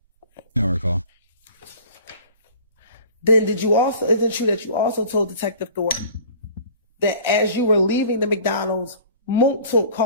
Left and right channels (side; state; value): both; inverted; correlation -0.46